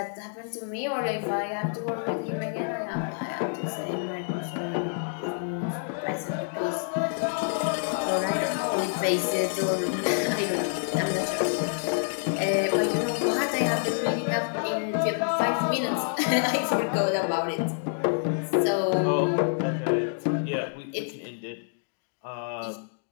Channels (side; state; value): right; silent; digital silence